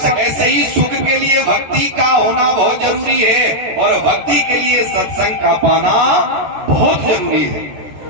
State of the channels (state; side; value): late; left; 13 ms